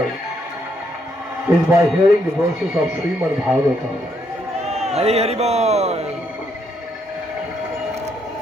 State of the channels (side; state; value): both; normal; correlation 0.74